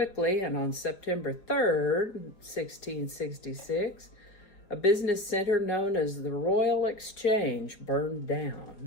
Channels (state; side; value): late; right; 5.0 ms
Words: and on September 3rd, 1666, a business center known as the Royal Exchange burned